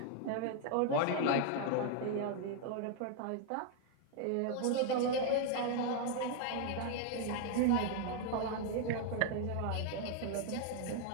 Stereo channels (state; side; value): different; both; correlation 0.00